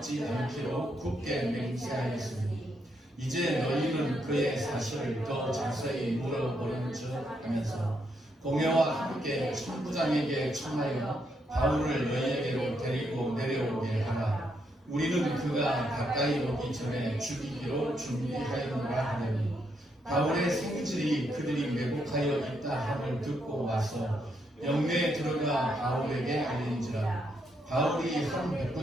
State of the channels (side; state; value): both; normal; correlation 0.78